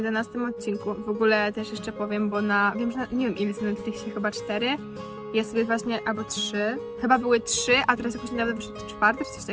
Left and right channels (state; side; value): identical; both; correlation 1.00